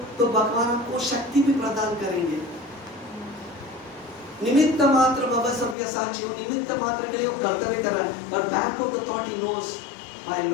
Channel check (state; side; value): drops out; right; at 5.8 s